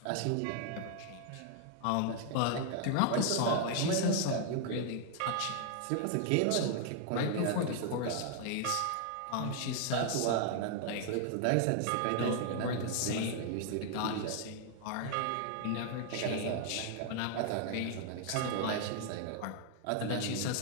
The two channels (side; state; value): both; different; correlation 0.00